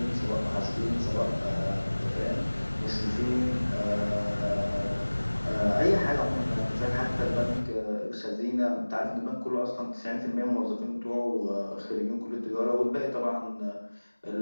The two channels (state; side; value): inverted; both; correlation -1.00